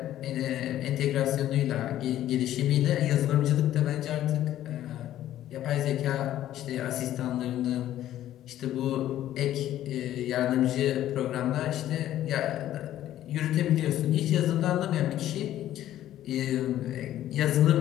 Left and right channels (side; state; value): right; quieter; 12.7 dB